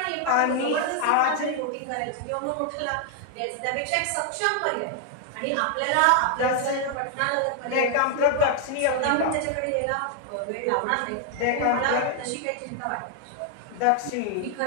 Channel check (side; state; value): both; different; correlation 0.00